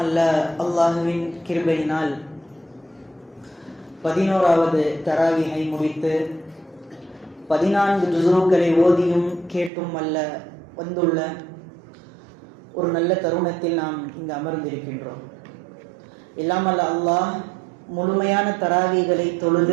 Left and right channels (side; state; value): left; drops out; at 9.7 s